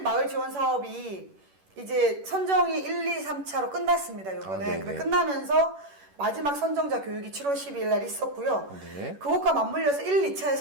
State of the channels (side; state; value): left; late; 11 ms